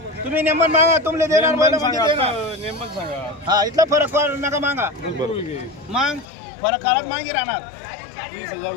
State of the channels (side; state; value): right; drops out; at 6.2 s